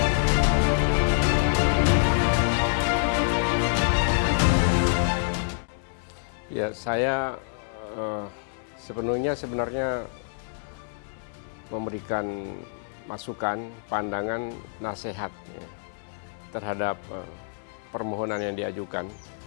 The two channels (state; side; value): silent; right; digital silence